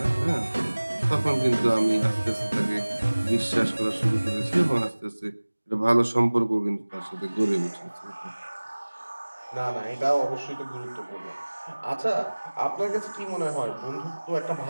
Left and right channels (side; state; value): both; inverted; correlation -1.00